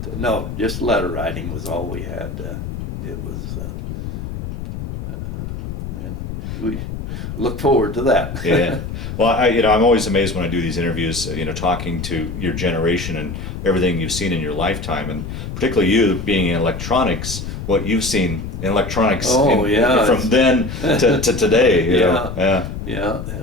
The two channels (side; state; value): left; noise; rumble, 7 dB below the sound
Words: no, just letter writing was all we had. It was, and we look forward to that. Yeah. Well, I'm always amazed when I do these interviews, talking to your generation and everything you've seen in your lifetime, and particularly you being in electronics, what you've seen in electronics Oh, yeah, from then to today. You know? Yeah. Yeah,